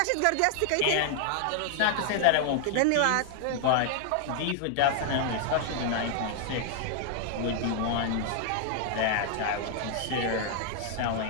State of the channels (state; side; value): different; both; correlation 0.00